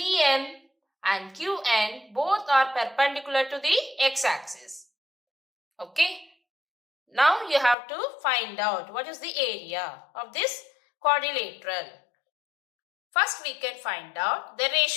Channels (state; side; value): drops out; right; at 7.8 s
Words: and QN both are perpendicular to the x-axis. Okay, now you have to find out what is the area of this quadrilateral. First we can find out the